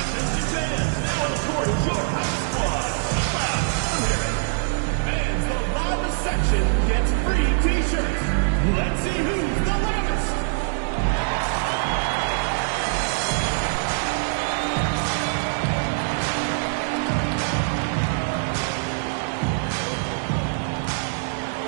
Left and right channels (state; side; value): silent; left; digital silence